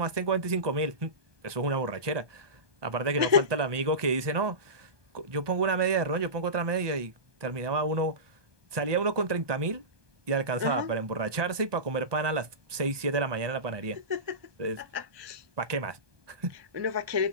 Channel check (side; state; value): left; late; 1.2 ms